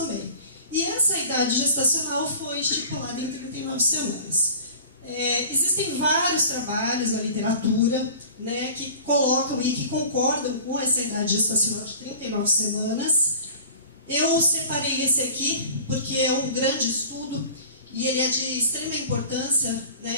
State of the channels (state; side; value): inverted; both; correlation -0.40